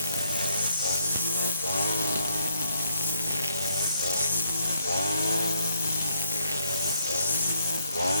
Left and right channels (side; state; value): both; inverted; correlation -0.70